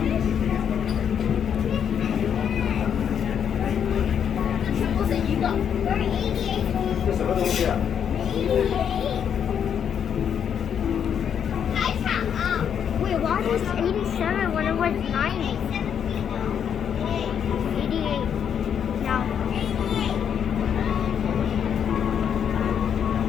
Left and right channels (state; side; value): quieter; right; 8.2 dB